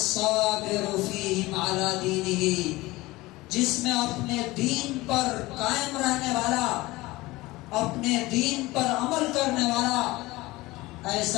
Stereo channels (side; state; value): right; quieter; 20.0 dB